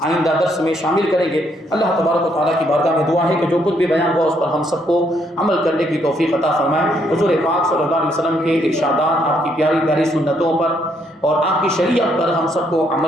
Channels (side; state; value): both; normal; correlation 0.72